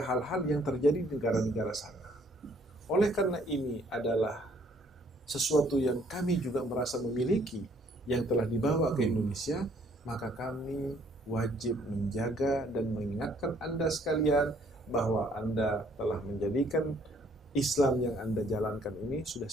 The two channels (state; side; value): normal; both; correlation 0.63